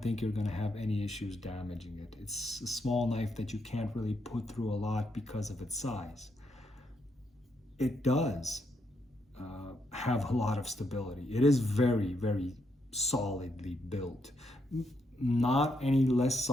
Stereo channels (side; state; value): both; normal; correlation 0.78